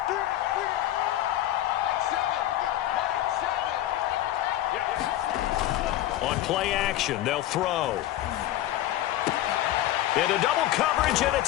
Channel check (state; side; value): quieter; right; 13.8 dB